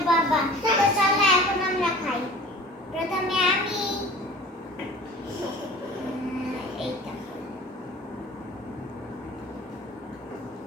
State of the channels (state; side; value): normal; both; correlation 0.43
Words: বাবা। তো চলো এখন আমরা খাই। প্রথমে আমি এইটা